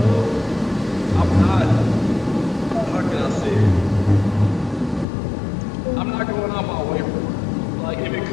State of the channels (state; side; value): drops out; right; at 5.1 s